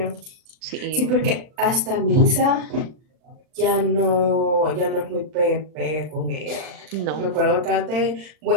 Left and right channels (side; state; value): left; late; 39 ms